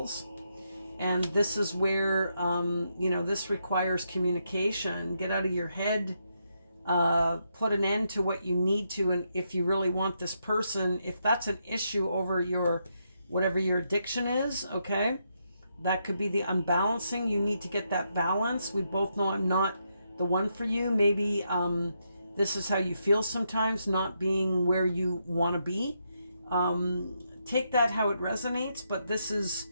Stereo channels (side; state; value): both; inverted; correlation -0.80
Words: And this is where, this requires communication. Get out of your head, put an end to what you need to. And if you really want this person, if that's an issue over whatever your addiction is, okay, that could be the unbalancing. You need to get that balance. We both know I'm not the one for you. Maybe this is how you feel sometimes, not being where you want to be. Take that how it resonates, but this is,